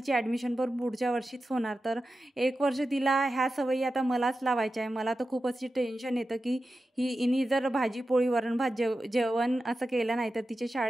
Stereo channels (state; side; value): normal; both; correlation 0.92